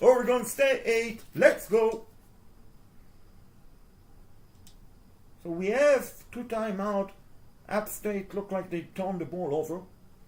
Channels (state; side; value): identical; both; correlation 1.00